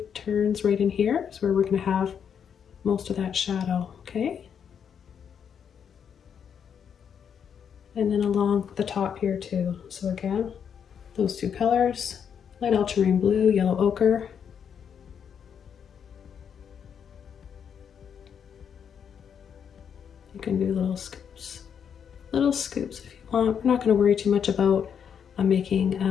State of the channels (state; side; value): quieter; right; 7.7 dB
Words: turns. Right in here is where we're going to have most of that shadow, okay? And then along the top here too. So again, those two colors, light ultramarine blue, yellow ochre. You can do little scoops if you want. We're not going to worry too much about making